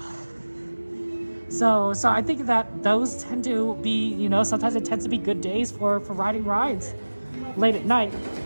So I think that those tend to be, you know, sometimes it tends to be good days for riding rides late at night,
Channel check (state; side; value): inverted; both; correlation -1.00